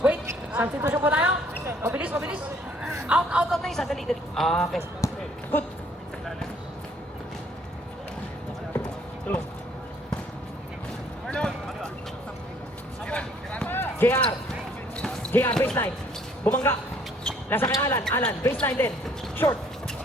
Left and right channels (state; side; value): normal; both; correlation 0.62